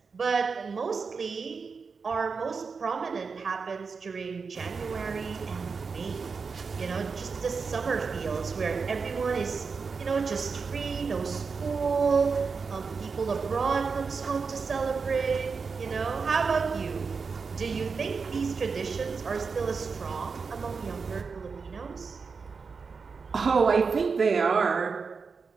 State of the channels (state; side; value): quieter; left; 5.1 dB